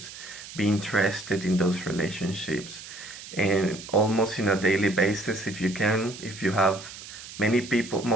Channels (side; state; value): right; noise; hiss, 14 dB below the sound